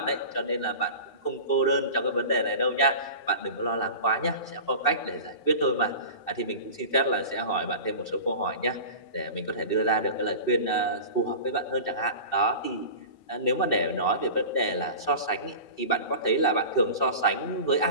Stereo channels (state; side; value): late; right; 2.6 ms